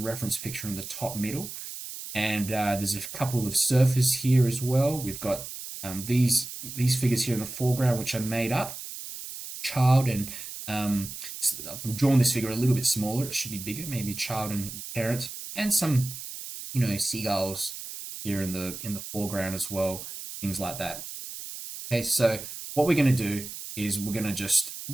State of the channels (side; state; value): right; noise; hiss, 10 dB below the sound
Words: picture in the top middle. And there's a couple of surfers here as well. We've got these figures here in the foreground, which are made up. Child and I've drawn this figure a little bit smaller. It should be bigger, maybe child and parent, and some, seagulls here in the foreground as well, things like that. Okay, so what we're going to do is we're going to just,